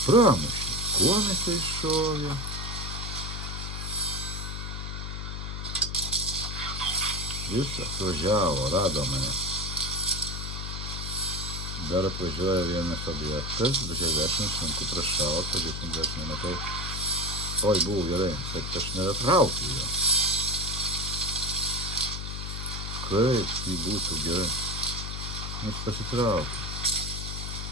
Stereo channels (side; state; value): left; noise; hum, 5 dB below the sound